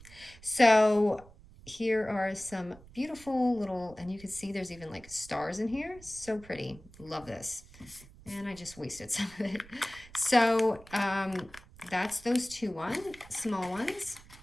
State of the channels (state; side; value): noise; right; rumble, 21 dB below the sound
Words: So here are some beautiful little, and you can see there's even like stars in here. So pretty. Love this. And I just wasted some of it. So that's those small ones.